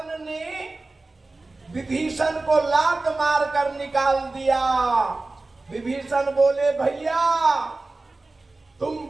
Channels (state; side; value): quieter; left; 3.3 dB